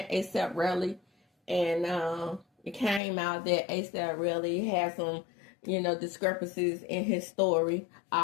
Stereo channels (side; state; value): right; drops out; at 3.0 s